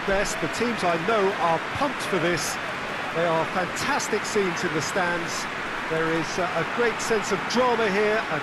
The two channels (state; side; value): identical; both; correlation 1.00